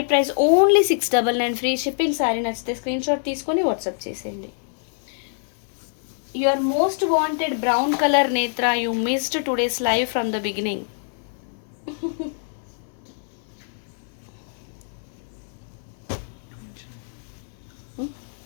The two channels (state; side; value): silent; right; 62 dB below the other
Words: price only 699, free shipping. Sari నచ్చితే స్క్రీన్ షాట్ తీసుకొని వాట్సాప్ చేసేయండి. Your most wanted brown colour Netra, you missed today's live from the beginning.